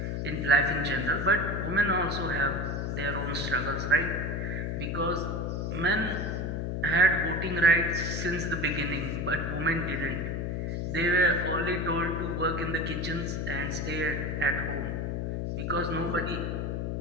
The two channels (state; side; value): noise; left; hum, 1 dB below the sound